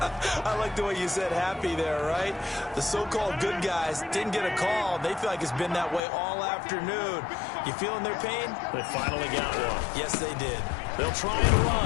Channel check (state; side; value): drops out; right; at 6.0 s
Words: I like the way you said happy there, right? The so-called good guys didn't get a call. They feel like it's been that way all afternoon. You feeling their pain? They finally got one. Yes, they did. They'll try and